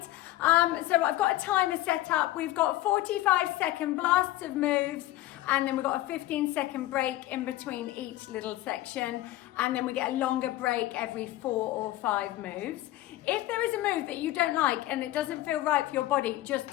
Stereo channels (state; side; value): quieter; right; 15.9 dB